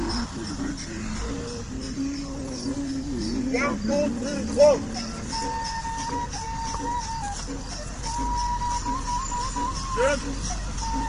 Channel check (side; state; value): both; identical; correlation 1.00